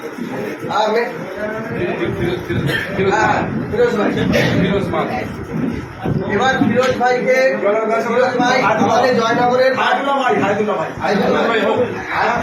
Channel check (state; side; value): identical; both; correlation 1.00